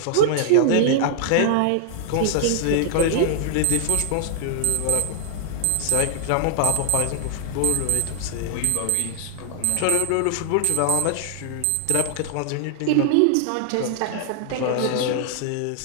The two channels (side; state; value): both; different; correlation -0.01